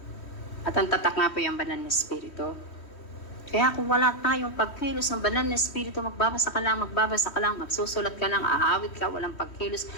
At ang tatak nga po yung banal na Espiritu. Kaya kung wala tayong pagkilos ng banal na Espiritu, magbabasa ka lang, magsusulat ka lang, aawit ka, walang pagkilos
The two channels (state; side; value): late; right; 3.1 ms